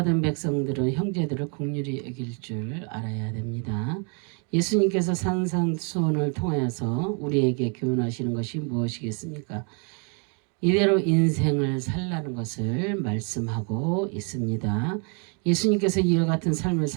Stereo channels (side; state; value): left; quieter; 37.6 dB